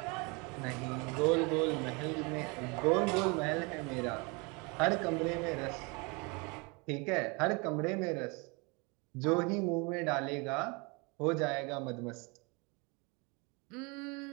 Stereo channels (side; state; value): left; quieter; 29.7 dB